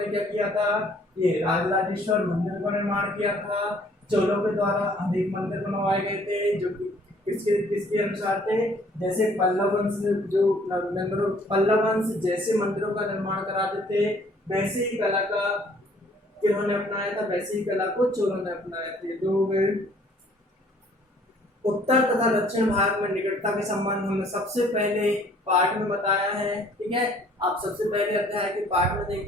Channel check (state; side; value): normal; both; correlation 0.59